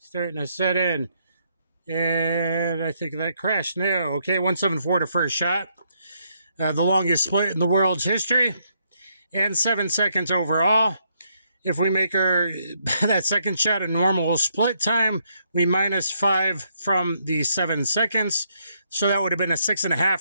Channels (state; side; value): inverted; both; correlation -0.74